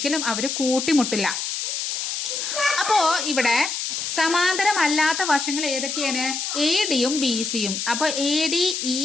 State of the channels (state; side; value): noise; left; hiss, 3 dB below the sound